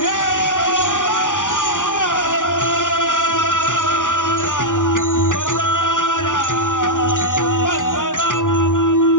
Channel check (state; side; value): late; right; 0.87 ms